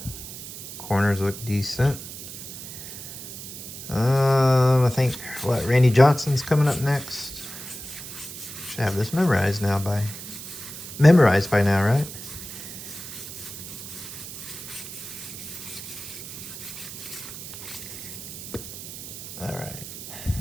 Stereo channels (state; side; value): noise; right; hiss, 11 dB below the sound